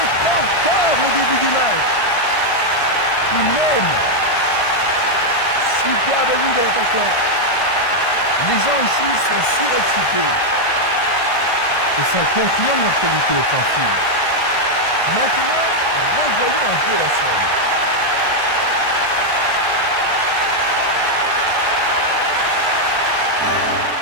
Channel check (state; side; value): late; right; 1.5 ms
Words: encore le début du match. Il mène. Superbe but de l'attaquant. Les gens ici sont surexcités. Et ça confirme leur qualité offensive. Maintenant, revoyons un peu la scène.